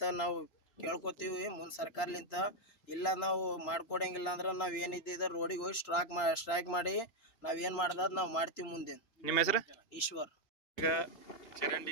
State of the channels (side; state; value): right; late; 3.0 ms